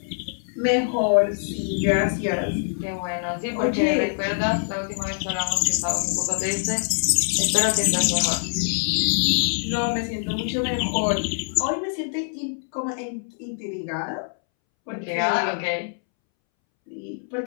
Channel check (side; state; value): right; silent; 62 dB below the other